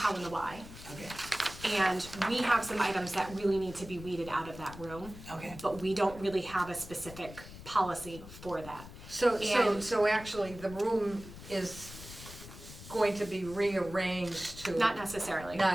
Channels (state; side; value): noise; left; rumble, 15 dB below the sound